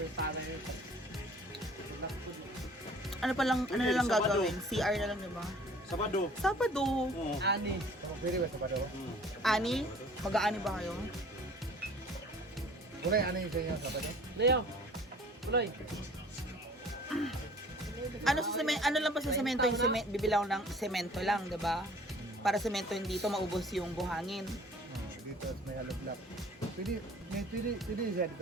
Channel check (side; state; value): both; normal; correlation 0.50